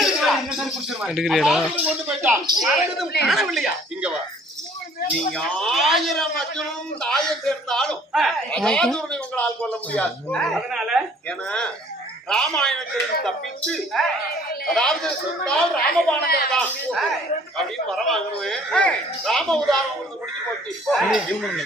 கொண்டு போயிட்டான். காணவில்லையா? இங்க வா. நீங்க 1000 அர்ஜுனும் தாயை சேர்ந்தாலும் அசாதுரனை உங்களால் கொல்ல முடியாது. அதனால ஏன்னா ராமாயணத்தில் தப்பிச்சு அதாவது சொன்னால் ராமபாணங்கள் தான் அப்படின்னு வரவாங்கன்னு ராம உதாரணம் உங்களுக்கு முடிஞ்சு போச்சு.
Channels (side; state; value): both; normal; correlation 0.56